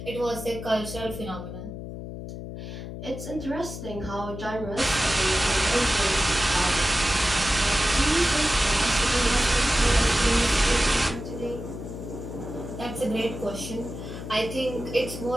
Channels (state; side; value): noise; left; hum, 9 dB below the sound